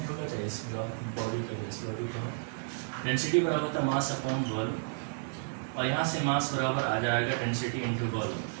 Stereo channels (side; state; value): left; silent; digital silence